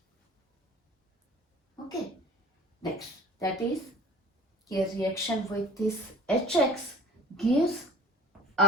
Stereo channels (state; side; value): normal; both; correlation 0.39